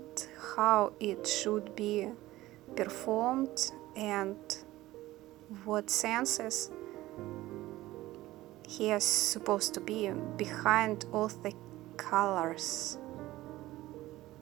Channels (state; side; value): quieter; left; 16.9 dB